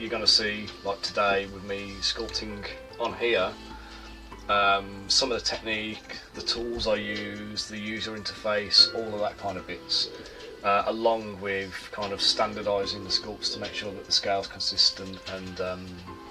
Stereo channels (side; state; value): both; identical; correlation 1.00